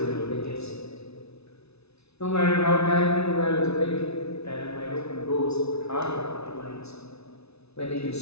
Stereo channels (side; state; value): right; late; 0.80 ms